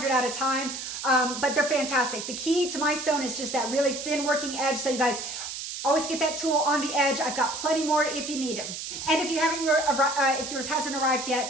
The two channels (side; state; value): right; noise; hiss, 7 dB below the sound